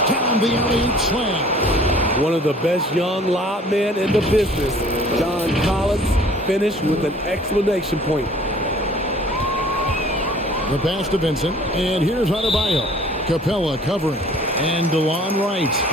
down the alley-oop slam. One of the best young lob men in the business, John Collins, finished with an exclamation point. The pass to Vincent, and here's Adebayo. Capella covering, and DeLon Wright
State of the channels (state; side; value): normal; both; correlation 0.52